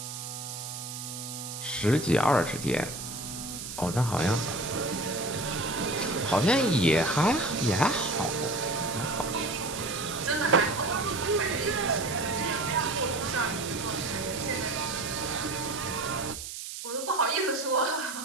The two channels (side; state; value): right; noise; hiss, 8 dB below the sound